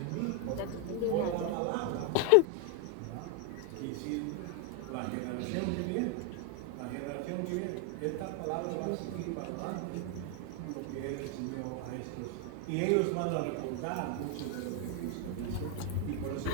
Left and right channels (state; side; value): different; both; correlation 0.01